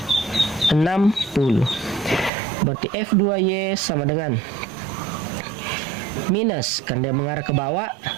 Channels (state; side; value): drops out; left; at 2.3 s